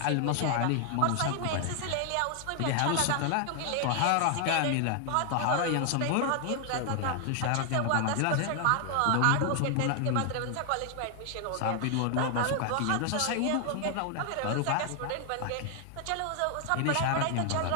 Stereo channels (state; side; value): different; both; correlation 0.00